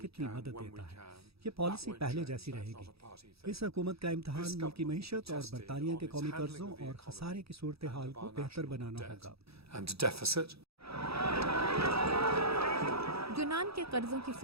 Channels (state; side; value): late; left; 0.77 ms